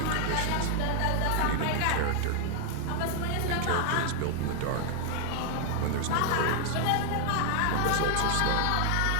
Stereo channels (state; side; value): different; both; correlation 0.00